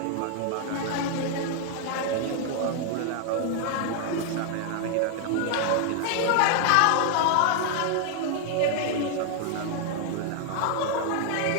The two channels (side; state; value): both; different; correlation 0.00